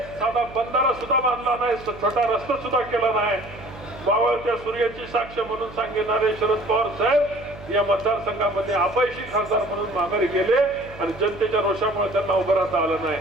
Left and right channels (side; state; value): right; noise; hum, 17 dB below the sound